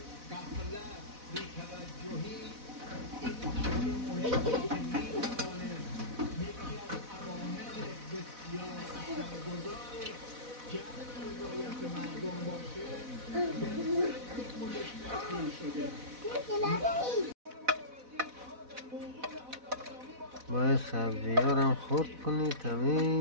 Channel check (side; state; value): left; late; 4.1 ms